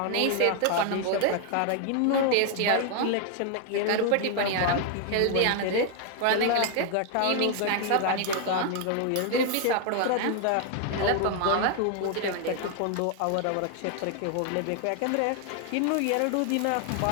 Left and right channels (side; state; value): both; different; correlation 0.00